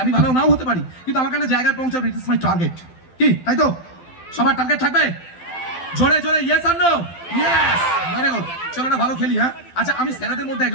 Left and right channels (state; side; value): late; right; 12 ms